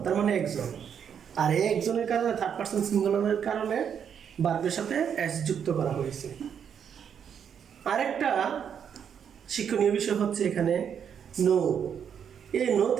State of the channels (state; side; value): quieter; left; 7.9 dB